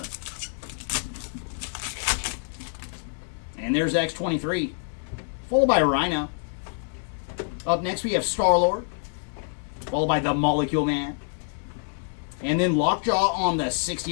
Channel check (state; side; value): silent; right; 61 dB below the other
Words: And there's X-23, followed by Rhino. Up next, we have Star-Lord, followed by the Molecule Man. And then Lockjaw on the